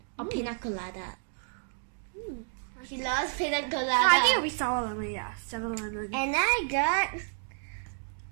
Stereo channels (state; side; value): silent; left; digital silence